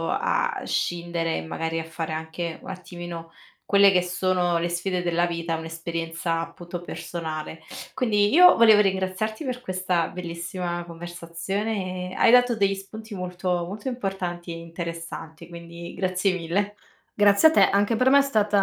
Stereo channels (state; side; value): identical; both; correlation 1.00